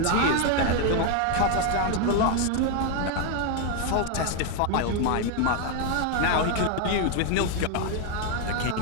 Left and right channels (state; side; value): different; both; correlation 0.01